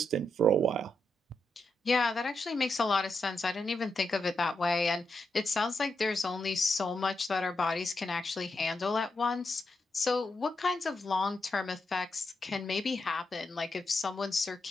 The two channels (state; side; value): normal; both; correlation 0.84